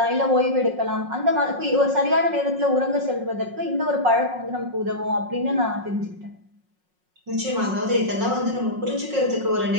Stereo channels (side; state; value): left; late; 5.5 ms